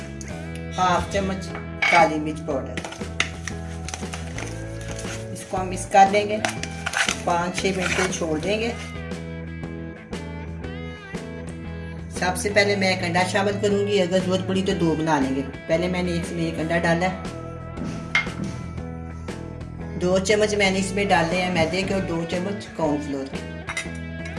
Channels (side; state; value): both; identical; correlation 1.00